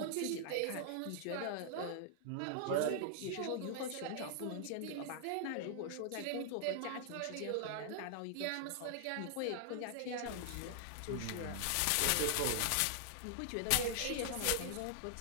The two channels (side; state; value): both; different; correlation -0.01